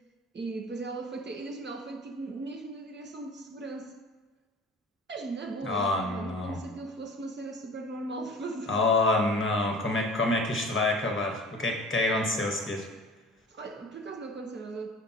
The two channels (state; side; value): normal; both; correlation 0.42